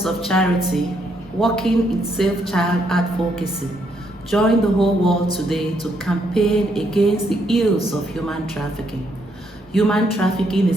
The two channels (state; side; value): normal; both; correlation 0.74